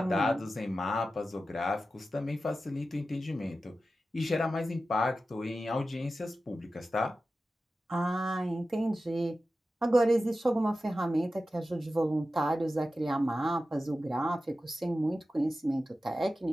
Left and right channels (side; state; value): both; normal; correlation 0.93